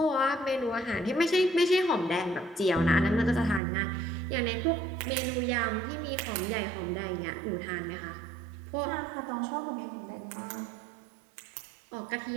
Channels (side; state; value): left; drops out; at 3.6 s